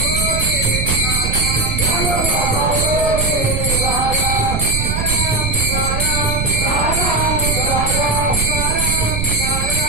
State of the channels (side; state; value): right; noise; rumble, 2 dB below the sound